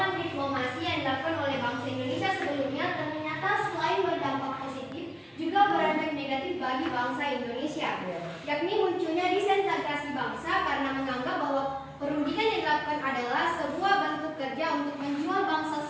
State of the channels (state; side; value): identical; both; correlation 1.00